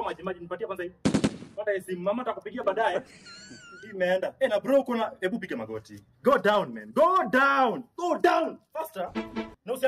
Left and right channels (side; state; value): both; identical; correlation 1.00